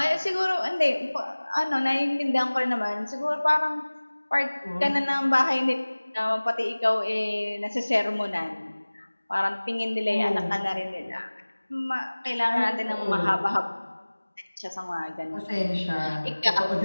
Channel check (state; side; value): inverted; both; correlation -1.00